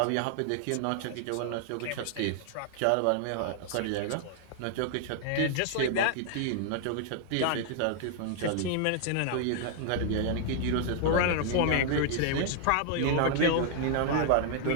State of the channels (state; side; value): different; both; correlation 0.00